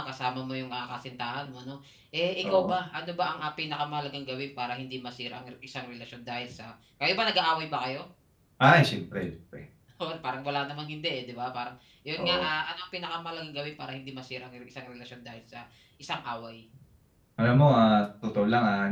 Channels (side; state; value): both; identical; correlation 1.00